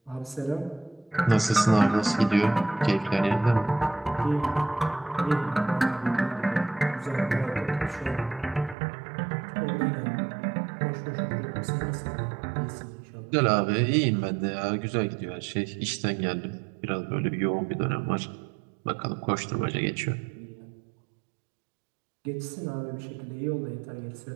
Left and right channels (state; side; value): drops out; left; at 8.8 s